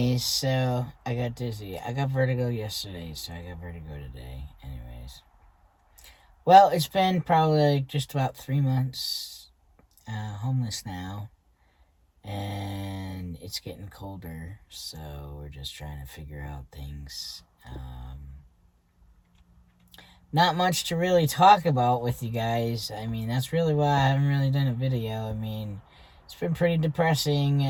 so I got dizzy. I got vertigo yesterday, so I got vertigo today. Anyways, well, it's been probably like just about 3 months homeless now, and it's getting colder, so we're just trying to figure out things. Not much to really talk about with you guys. I mean, that's really why I haven't really done a video. I mean, it's been pretty depressing,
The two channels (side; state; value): both; identical; correlation 1.00